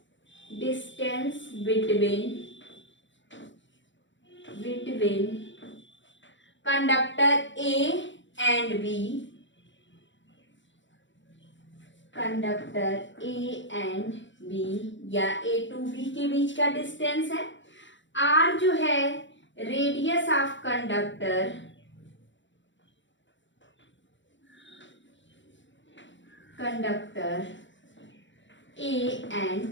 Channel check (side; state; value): right; late; 0.54 ms